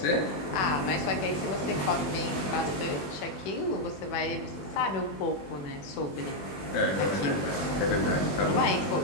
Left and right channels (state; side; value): late; right; 21 ms